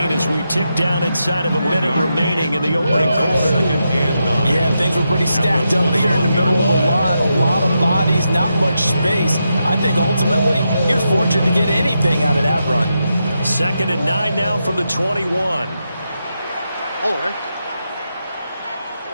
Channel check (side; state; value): both; inverted; correlation -0.85